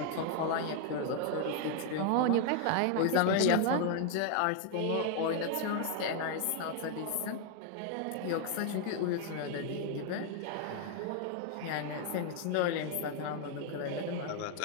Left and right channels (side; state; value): both; different; correlation 0.00